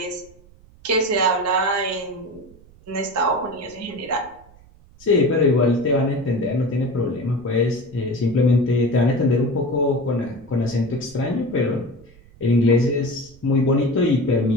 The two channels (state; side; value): noise; right; rumble, 25 dB below the sound